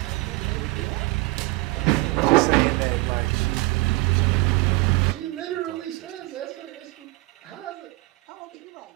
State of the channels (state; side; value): quieter; left; 22.3 dB